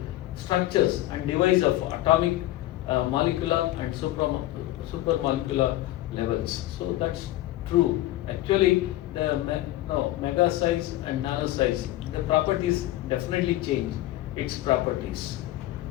structures and device of atomic, molecular, and supramolecular levels. So that's true. Actually, the mega size and nano size, the properties definitely change its properties.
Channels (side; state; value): right; quieter; 15.8 dB